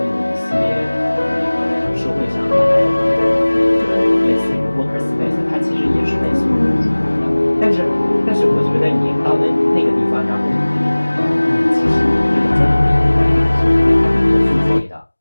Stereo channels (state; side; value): inverted; both; correlation -1.00